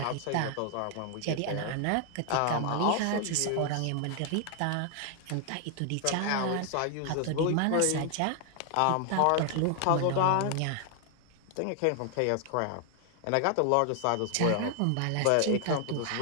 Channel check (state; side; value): different; both; correlation 0.00